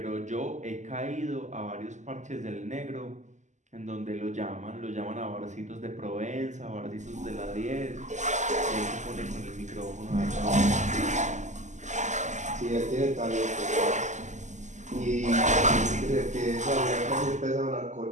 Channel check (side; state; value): left; late; 0.34 ms